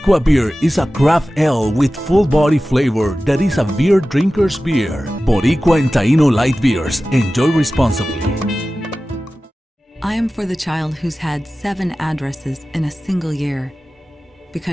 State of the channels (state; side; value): normal; both; correlation 0.96